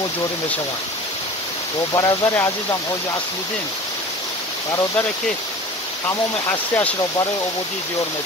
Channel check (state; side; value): normal; both; correlation 0.39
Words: جوری میشه و برادر عزیزم حاجی اصلودین برادری که تمام هستیش را برای عبودی دیار